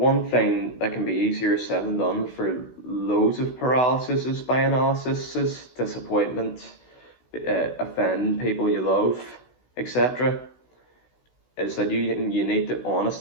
thing that can be easier said than done for loads of paralysis by analysis is disappointment, offending people you love, etc. Is that you need to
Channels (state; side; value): late; right; 16 ms